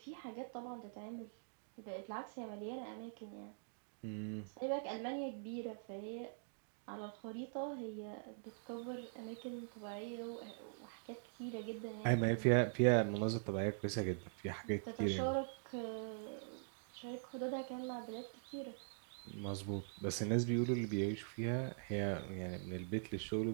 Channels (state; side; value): silent; left; digital silence